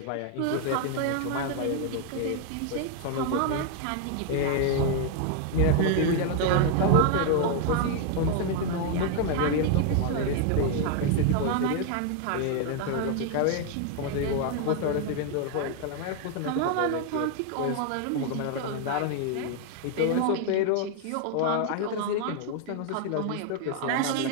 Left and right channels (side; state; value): both; different; correlation 0.00